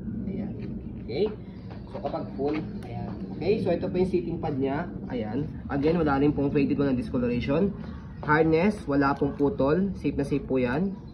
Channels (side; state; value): both; identical; correlation 1.00